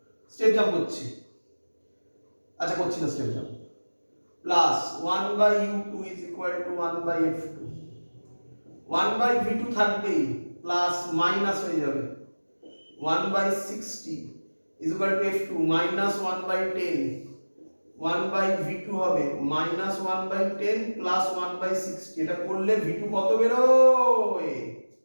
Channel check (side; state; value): both; inverted; correlation -1.00